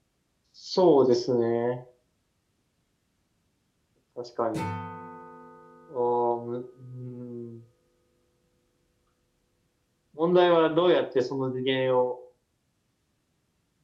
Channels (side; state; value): both; identical; correlation 1.00